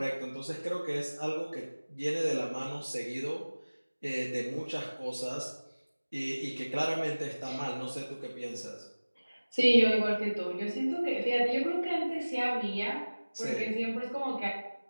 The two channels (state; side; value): inverted; both; correlation -1.00